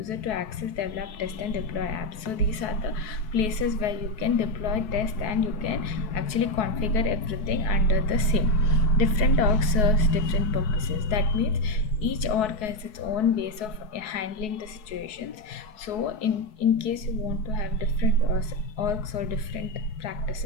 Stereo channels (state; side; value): late; right; 4.7 ms